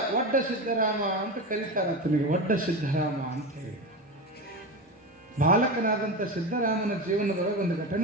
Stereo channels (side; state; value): both; normal; correlation 0.22